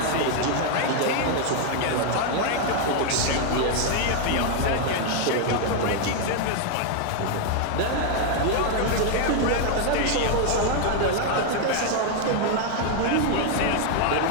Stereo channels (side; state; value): both; different; correlation 0.00